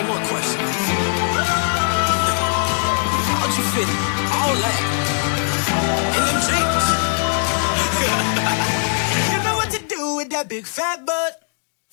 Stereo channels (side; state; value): right; silent; digital silence